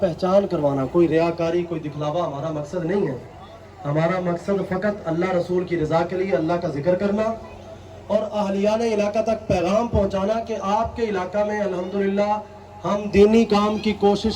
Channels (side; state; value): both; identical; correlation 1.00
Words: پہچان کروانا، کوئی ریاکاری کوئی دکھلاوا ہمارا مقصد نہیں ہے۔ ہمارا مقصد فقط اللہ رسول کی رضا کے لیے اللہ کا ذکر کرنا اور اہلیان علاقہ تک پیغام پہنچانا کہ آپ کے علاقہ میں الحمدللہ ہم دینی کام کی